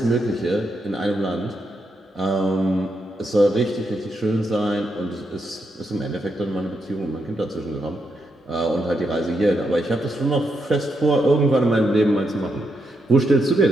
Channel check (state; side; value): normal; both; correlation 0.81